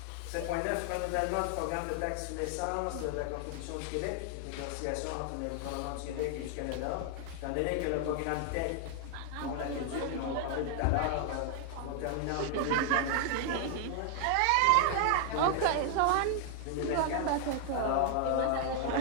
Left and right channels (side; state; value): both; different; correlation 0.00